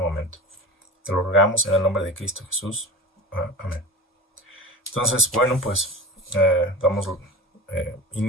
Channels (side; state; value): both; normal; correlation 0.32